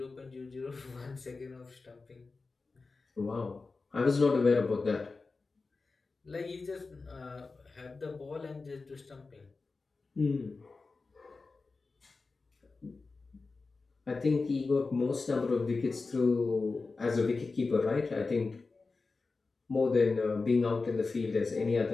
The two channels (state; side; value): quieter; right; 4.0 dB